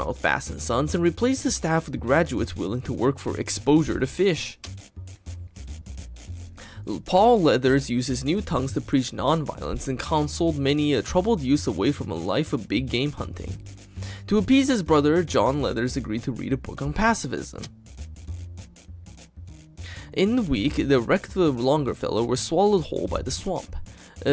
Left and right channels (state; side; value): identical; both; correlation 1.00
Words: Bass & Sons and replaced the staff with graduates willing to work for exposure to fish. Paul Leathers used his new tongues to preach nonviolence and counseled many a troubled youth away from a life of big game hunting. To appease his brother, John Leathers agreed to read a book on pacifism. In the week, the wrecked Longfellow was swallowed whole by the swamp.